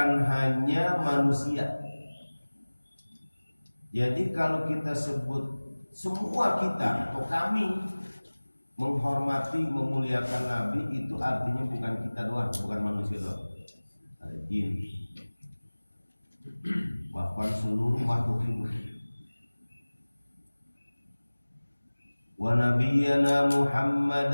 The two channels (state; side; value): inverted; both; correlation -1.00